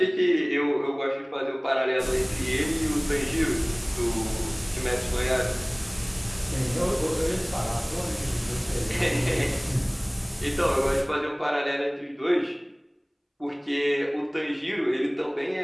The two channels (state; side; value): identical; both; correlation 1.00